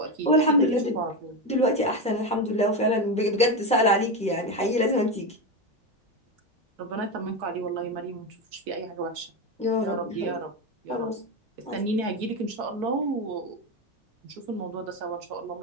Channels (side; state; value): both; normal; correlation 0.14